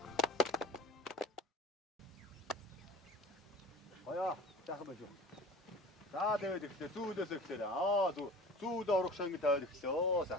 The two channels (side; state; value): both; normal; correlation 0.40